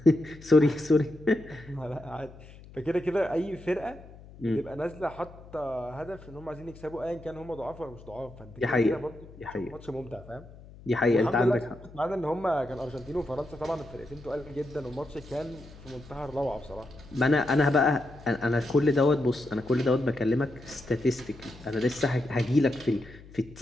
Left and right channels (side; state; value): left; noise; hum, 19 dB below the sound